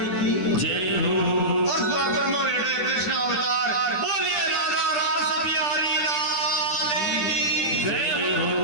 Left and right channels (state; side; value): late; right; 10 ms